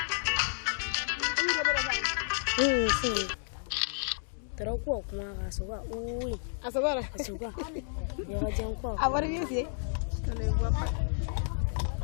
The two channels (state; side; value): silent; right; digital silence